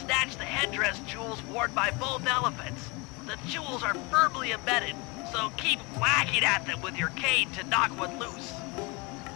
the headdress jewels worn by both elephants. The jewels are firmly embedded, so keep whacking at them with your cane to knock one loose.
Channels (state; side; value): quieter; right; 27.3 dB